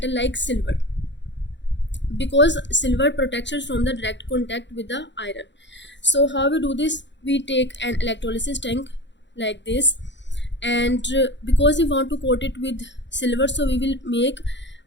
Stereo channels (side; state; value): right; late; 0.52 ms